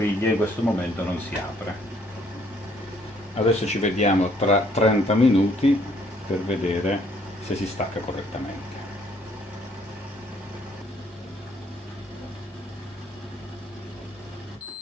in questo momento non si apre. Adesso ci vediamo tra 30 minuti per vedere se si stacca correttamente.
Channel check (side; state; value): both; normal; correlation 0.65